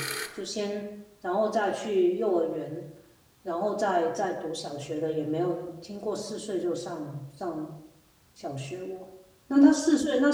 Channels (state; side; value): identical; both; correlation 1.00